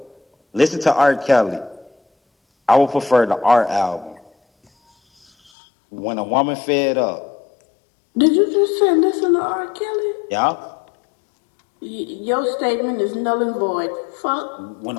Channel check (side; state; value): right; drops out; at 5.5 s